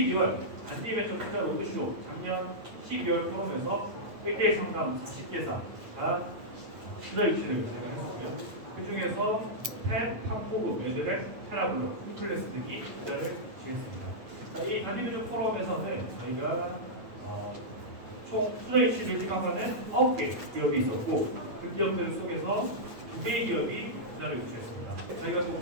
단일외적 투자 로드쇼 작년 12월 포럼에서 1대1 상담 40개사가 투자 유치를 진행을 했었고요. 그 중에서 펫, 팝포그, 레드벨, 테라블로, 홈플레스 등이 투자를 유치했습니다. 이 단일외적 포럼에서는 저희가 총 투자 유치를 희망하는 9개 기업이 있었고 그 기업들 속에서 2개의 기업이 투자를 유치했습니다. 저희가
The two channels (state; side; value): late; left; 8.7 ms